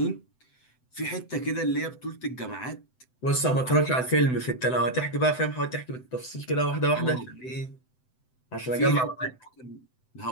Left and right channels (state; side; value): late; right; 7.9 ms